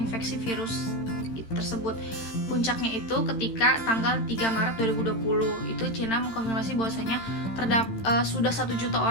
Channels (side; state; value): right; late; 13 ms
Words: virus tersebut. Puncaknya itu ketika tanggal 3 Maret 2020 itu Cina mengkonfirmasi bahwasanya sudah 1 juta